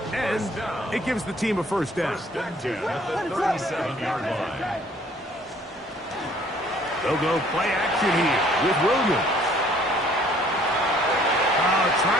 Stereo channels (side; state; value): both; normal; correlation 0.58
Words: And it gives the team a first down. First and 10 at the 37-yard line. They'll go play action here with Williams.